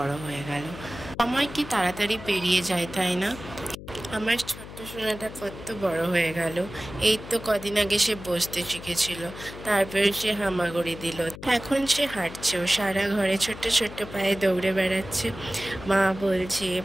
হয়ে গেল। সময় কি তাড়াতাড়ি পেরিয়ে যায়, তাই না? আমার ছোট্ট সোনাটা কত বড় হয়ে গেল। এই তো কদিন আগে সে বসতে শিখেছিল, তারপরে সে হামাগুড়ি দিল, এখন সে হাঁটছেও, সারা ঘরে ছোট্ট ছোট্ট পায়ে দৌড়ে বেড়াচ্ছে। মা বলছে,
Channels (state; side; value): noise; left; hum, 13 dB below the sound